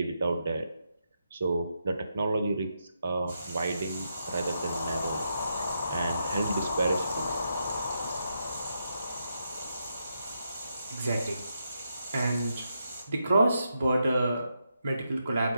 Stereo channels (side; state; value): both; inverted; correlation -0.83